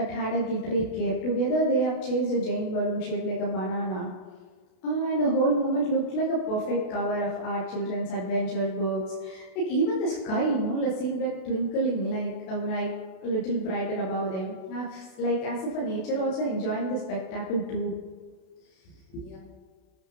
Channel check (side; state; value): right; late; 32 ms